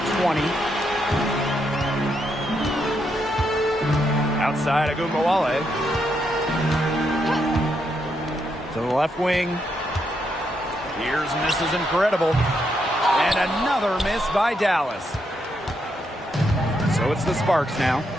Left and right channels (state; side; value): normal; both; correlation 0.79